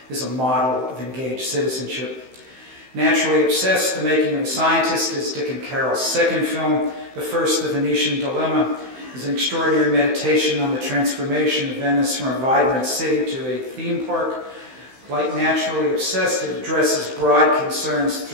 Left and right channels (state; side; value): late; left; 15 ms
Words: is a model of engaged citizenship. Naturally obsessed, The Making of a Scientist is Dick and Carole's second film. The first, The Venetian Dilemma, is an extraordinary meditation on the transformation of Venice from a vibrant city to a theme park. Like Naturally Obsessed, it addresses broad concerns